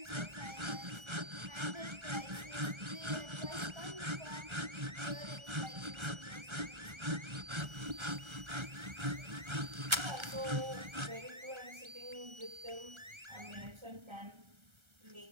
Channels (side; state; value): left; late; 1.3 ms